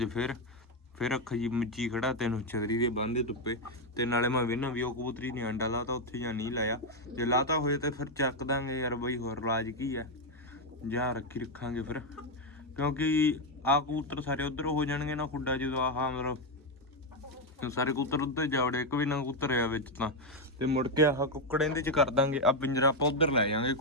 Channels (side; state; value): both; normal; correlation 0.04